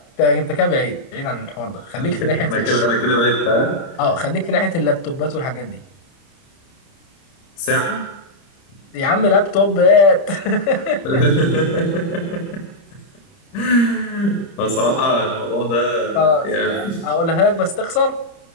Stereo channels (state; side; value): late; right; 30 ms